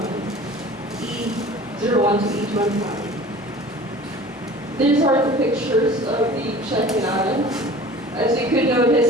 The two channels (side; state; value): both; normal; correlation 0.43